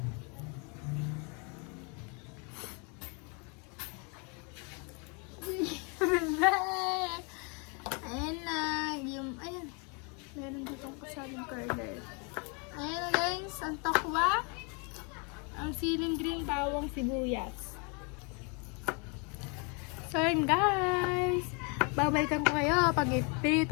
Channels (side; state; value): right; quieter; 34.0 dB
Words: Ayan na, ayan. Meron ditong kasaling curler. Ayan na guys, ang tokwa. Ang siling green, bawang, sibuyas. So yun guys, babalikan ko kayo pag